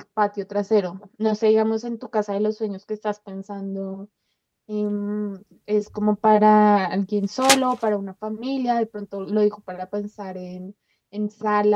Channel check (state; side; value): identical; both; correlation 1.00